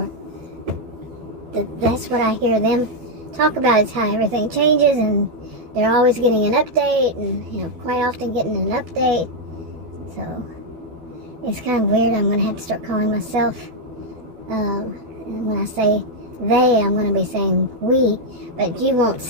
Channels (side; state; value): left; late; 12 ms